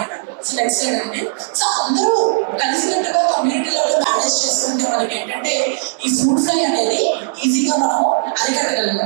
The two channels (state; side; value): silent; left; digital silence